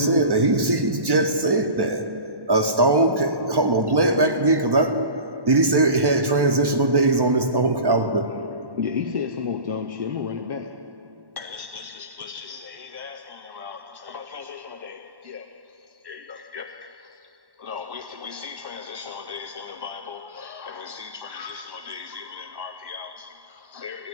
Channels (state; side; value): late; left; 1.1 ms